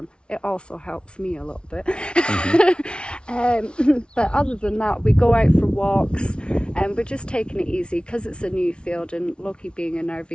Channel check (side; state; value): right; late; 0.057 ms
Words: It also helps me a little bit. But other than that, we go out for walks, and we're just taking it easy because it's a new field, and Loki being a